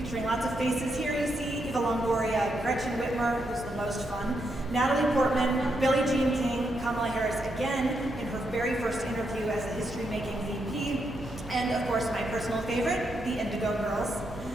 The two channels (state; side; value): noise; right; hum, 16 dB below the sound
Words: lots of faces here you see: Eva Longoria, Gretchen Wimmer, who's the most fun, Natalie Portman, Billie Jean King, Kamala Harris again in her very first interview as a history-making VP, and of course my personal favorite, the Indigo Girls.